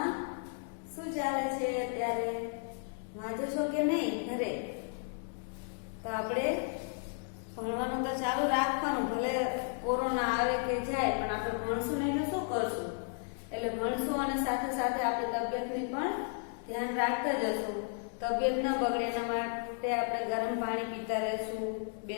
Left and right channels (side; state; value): right; silent; 55 dB below the other